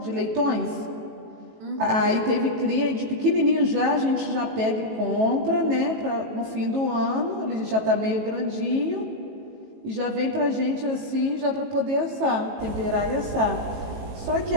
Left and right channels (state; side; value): late; left; 18 ms